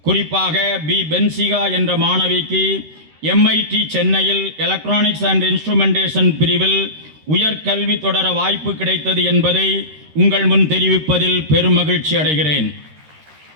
குறிப்பாக பி பென்சிகா என்ற மாணவிக்கு MIT சென்னையில் எலக்ட்ரானிக்ஸ் அண்ட் இன்ஸ்ட்ருமெண்டேஷன் பிரிவில் உயர்கல்வி தொடர வாய்ப்பு கிடைத்தது என்பதை உங்கள் முன் தெரிவிப்பதில் பெருமகிழ்ச்சி அடைகிறேன்.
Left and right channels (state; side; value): late; left; 13 ms